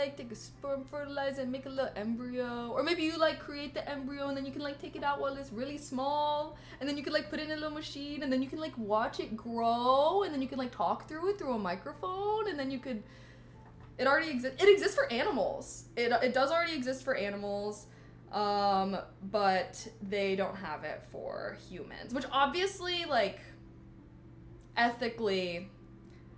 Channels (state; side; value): identical; both; correlation 1.00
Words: take a sperm, fertilize it, make a little embryo. Or maybe you, like, create the embryo and then you can, like, take it out while it's really small. And then you can, like, put it in a little machine and then you can, like, watch it grow. And then you can, like, talk through it through a microphone. And then you could, it already exists. It exists for animals. It does already exist for animals. But they don't have it for humans, which obviously, like, ethically,